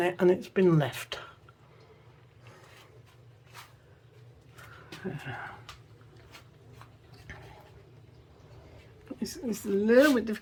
it, and it's been left. It's a little bit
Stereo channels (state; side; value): identical; both; correlation 1.00